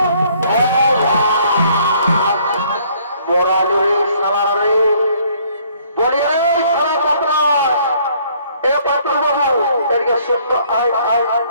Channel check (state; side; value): inverted; both; correlation -0.62